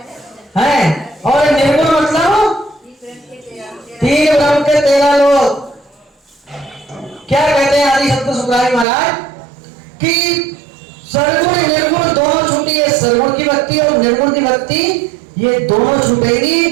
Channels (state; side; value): drops out; left; at 8.8 s